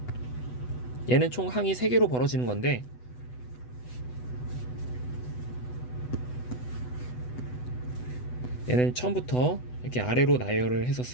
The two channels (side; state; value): right; late; 8.1 ms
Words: 얘는 총 항이 3개로 벌어지는 건데 얘는 처음부터 이렇게 아래로 나열을 해서